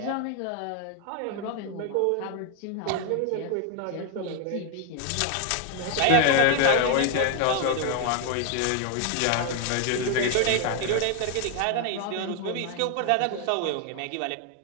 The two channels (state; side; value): different; both; correlation 0.00